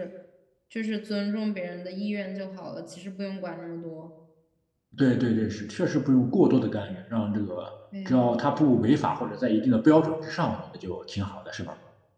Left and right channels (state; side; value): identical; both; correlation 1.00